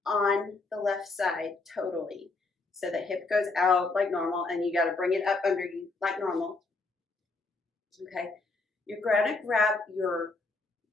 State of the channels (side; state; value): right; quieter; 3.5 dB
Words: on the left side totally. So the hip goes out like normal, and you got to bring it up under you like normal. Okay. You're going to grab your